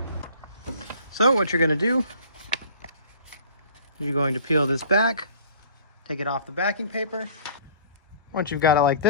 So what you're going to do is you're going to peel this back, take it off the backing paper. Once you've got it like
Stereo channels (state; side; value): inverted; both; correlation -0.49